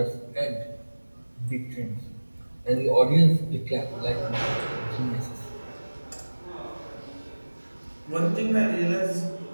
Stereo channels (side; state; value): both; inverted; correlation -1.00